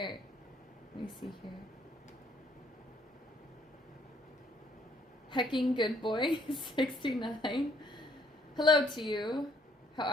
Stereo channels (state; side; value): normal; both; correlation 0.65